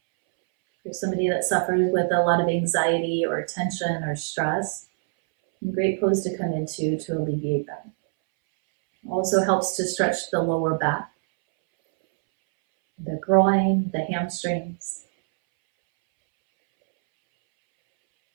For somebody that suffers with a lot of anxiety or tension or stress, a great pose to come into to alleviate that. Also helps to stretch the lower back, the groin, the hamstrings.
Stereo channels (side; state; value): left; silent; 63 dB below the other